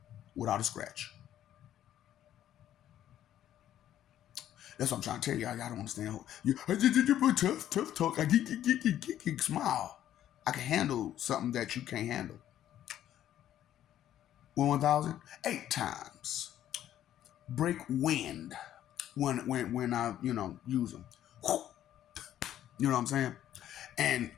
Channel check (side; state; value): right; quieter; 11.6 dB